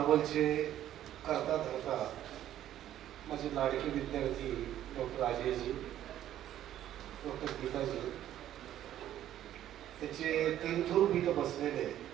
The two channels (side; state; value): left; quieter; 12.0 dB